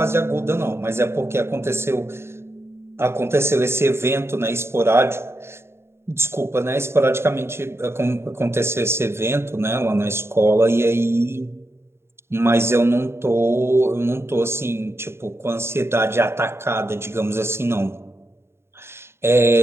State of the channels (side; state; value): left; late; 0.12 ms